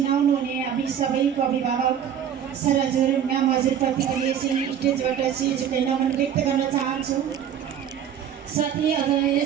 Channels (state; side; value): quieter; left; 9.0 dB